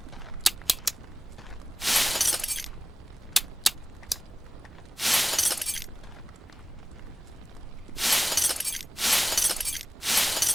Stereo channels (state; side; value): normal; both; correlation 0.97